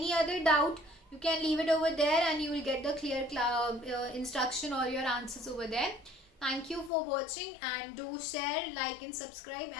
other doubt, You can leave it over there and you will get the clear instruction or your answers over there. Thank you for watching, and do share, like and subscribe,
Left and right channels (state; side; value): drops out; right; at 6.9 s